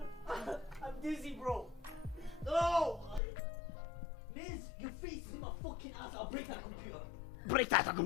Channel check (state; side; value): drops out; right; at 3.2 s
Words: I'm dizzy, bro. No! Miss, your face is in my fucking ass. I'll break that computer. Break that